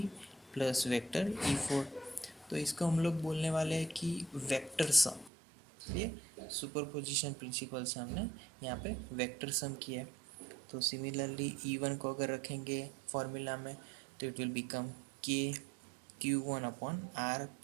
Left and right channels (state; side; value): drops out; left; at 5.3 s